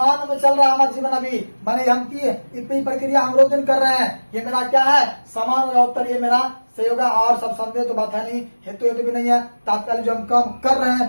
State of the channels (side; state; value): both; inverted; correlation -1.00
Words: में चल रहा है हमारा जीवन अभी, माने हम की प्रक्रिया हम रोज दिन कर रहे हैं, ये मेरा क्या है, समान होगा उत्तर, ये मेरा सही होगा। और सब संदेह तो बात है नहीं, हेतु हेतु भी नहीं है, तात्कालिक जो हम काम कर रहे